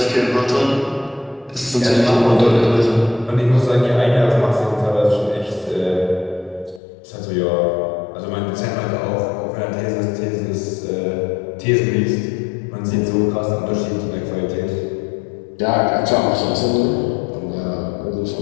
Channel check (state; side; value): drops out; right; at 6.8 s